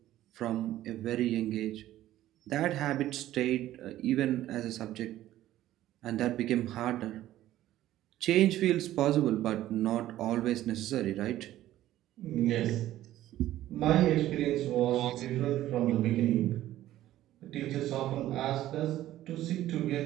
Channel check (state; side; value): quieter; left; 14.0 dB